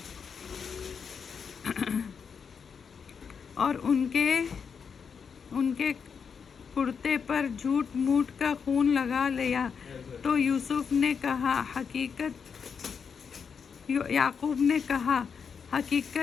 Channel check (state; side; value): quieter; right; 6.3 dB